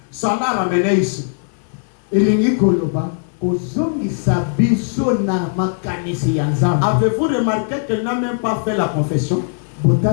ça l'a ramené ici. Avez-vous remarqué qu'elle n'a même pas fait la confession?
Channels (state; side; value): silent; right; 57 dB below the other